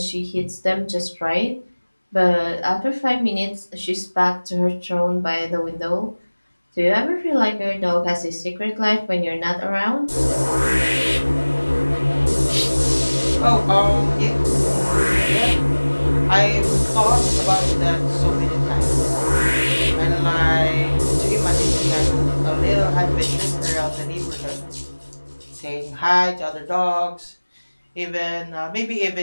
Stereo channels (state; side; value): inverted; both; correlation -1.00